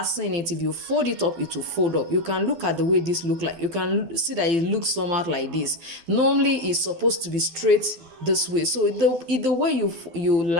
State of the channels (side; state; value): left; late; 12 ms